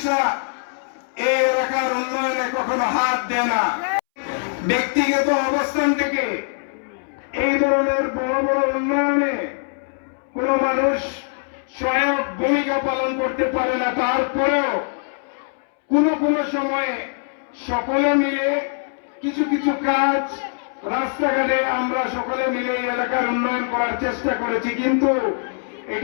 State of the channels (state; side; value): silent; right; 64 dB below the other